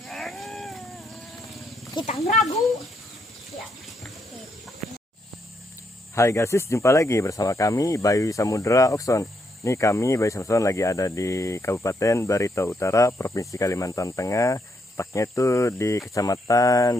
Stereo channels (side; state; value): both; normal; correlation 0.77